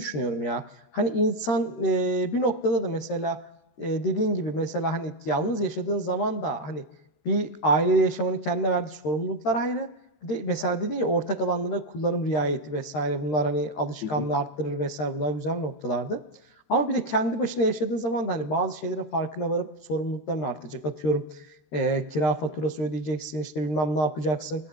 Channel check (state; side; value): late; right; 13 ms